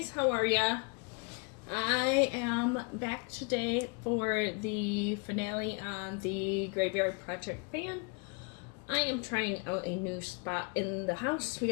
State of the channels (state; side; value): quieter; right; 33.0 dB